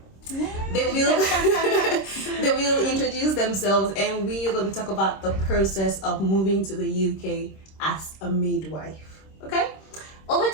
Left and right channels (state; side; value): late; right; 26 ms